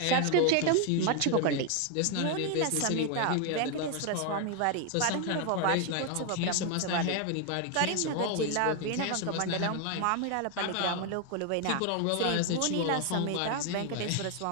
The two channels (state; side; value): different; both; correlation 0.01